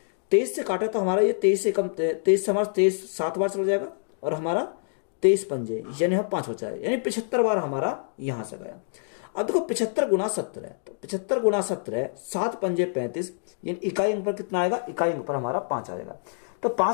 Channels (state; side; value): silent; right; digital silence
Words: 23 से काटे तो हमारा ये 23 से कम, 23 से हमारा 23 7 बार चला जाएगा और हमारा 23 पंजे यानी हम 5 बचा है, यानी 75 बार हमारा यहां से गया। अब देखो 75 गुना 17 है, तो 75 गुना 17 7 पंजे 35, यानी इकाई अंक पर कितना आएगा, इकाई अंक पर हमारा 5 आएगा। तो